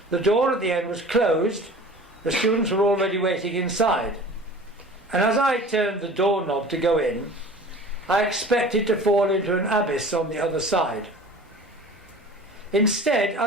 The door at the end was closed, the students were already waiting inside, and as I turned the doorknob to go in, I expected to fall into an abyss on the other side. Instead,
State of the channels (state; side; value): normal; both; correlation 0.41